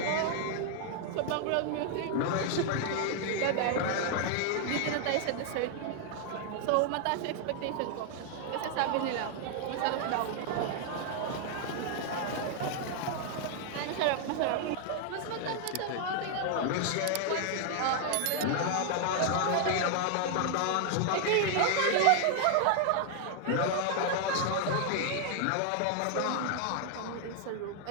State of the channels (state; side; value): different; both; correlation 0.00